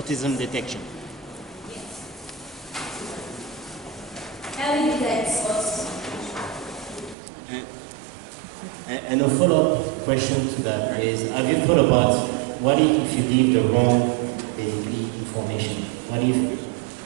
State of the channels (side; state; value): left; drops out; at 7.2 s